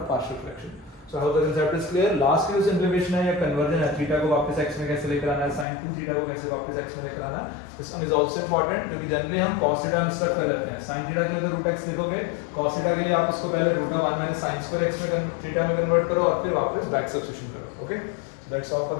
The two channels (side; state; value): right; drops out; at 5.7 s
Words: of partial fraction. So I hope the concept is clear. Last की जो simplification है या conversion है, theta को वापस x में कैसे लेकर आना है, sin 2 थीटा को कैसे वापस x में लेकर आना है, this one is also important क्योंकि जनरली हम cos थीटा मिस्टेक कर लेते हैं। sin थीटा के लिए तो रूट x लिखोगे, cos थीटा के लिए आप इसको पहले root of 1 minus sin square x में थीटा में कन्वर्ट करो और फिर वापस बैक सब्स्टिट्यूशन करो। Okay, so that's all for